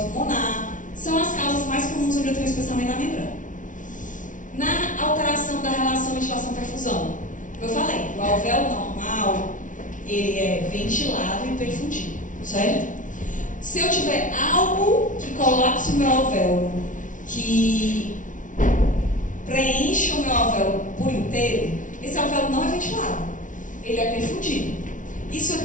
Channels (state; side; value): late; right; 0.37 ms